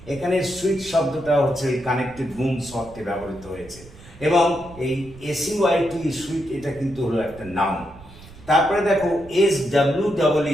এখানে সুইট শব্দটা হচ্ছে এই কানেক্টেড রুমস অর্থে ব্যবহৃত হয়েছে। এবং এই এসইউআইটি সুইট, এটা কিন্তু হলো একটা নাউন। তারপরে দেখো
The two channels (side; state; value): right; noise; rumble, 20 dB below the sound